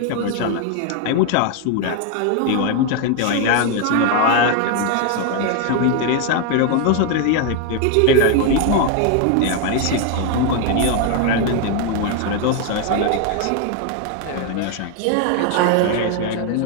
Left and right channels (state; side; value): different; both; correlation 0.01